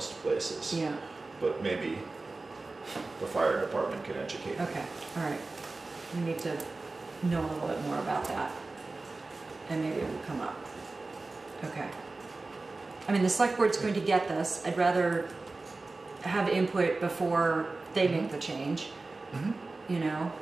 places. Yeah. But maybe the fire department can educate me. Okay. All right. We need to know a little bit more about that, and maybe it will come up. Okay. I mean, the select board's going to get this. I'd rather have input before they make the change. you know,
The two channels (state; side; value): quieter; left; 3.4 dB